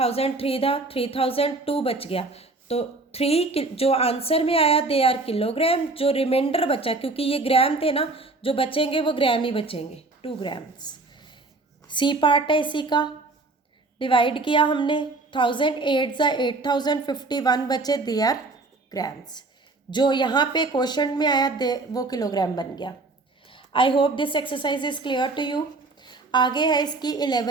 था, 3002 बच गया। तो 3 जो आंसर में आया दे आर किलोग्राम। जो रिमाइंडर बचा, क्योंकि ये ग्राम थे ना, जो बचेंगे वो ग्राम ही बचेंगे, 2 ग्राम्स। सी पार्ट है इसी का, डिवाइड किया हमने, 1000 8 ज़ा 8051 बचे, दे आर ग्राम्स। जो यहाँ पे क्वेश्चन में आया दे वो किलोग्राम बन गया। I hope this exercise is clear to you. आगे है इसकी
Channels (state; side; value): quieter; left; 3.3 dB